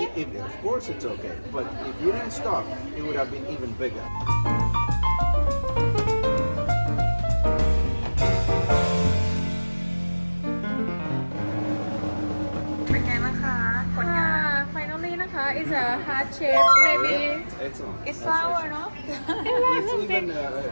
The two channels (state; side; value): inverted; both; correlation -1.00